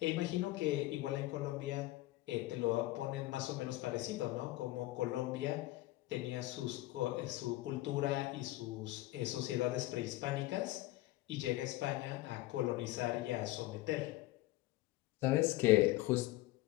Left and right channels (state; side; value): quieter; right; 17.9 dB